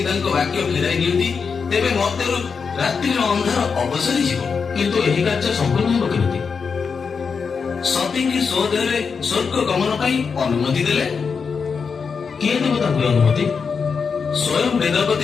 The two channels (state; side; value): quieter; right; 5.6 dB